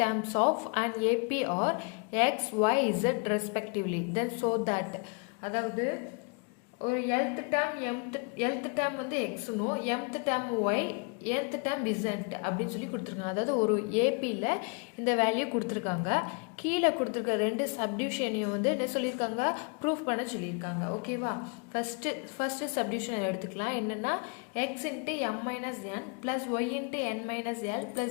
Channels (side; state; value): right; quieter; 33.9 dB